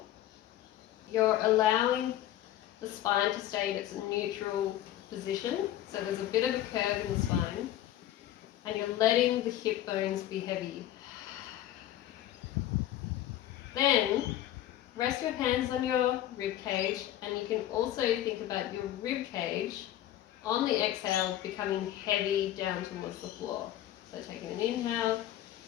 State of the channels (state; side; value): quieter; right; 12.9 dB